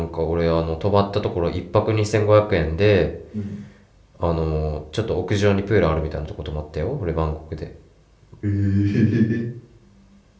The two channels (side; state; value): both; identical; correlation 1.00